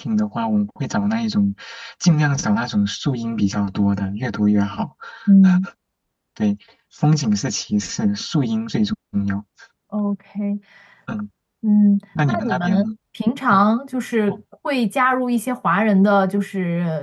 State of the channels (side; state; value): both; identical; correlation 1.00